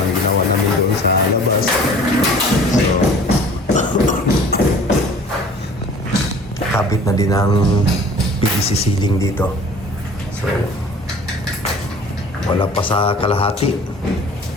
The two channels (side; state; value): both; normal; correlation 0.47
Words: ginawa namin doon sa labas. So kabit na din ang PVC ceiling dito. So wala pa sa kalahati.